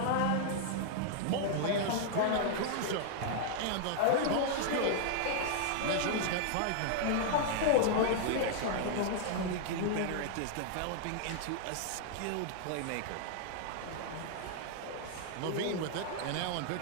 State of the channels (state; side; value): different; both; correlation -0.01